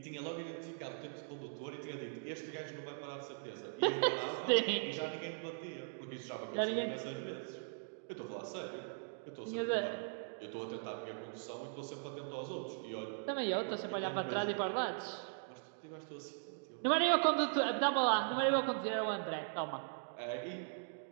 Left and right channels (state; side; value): silent; left; digital silence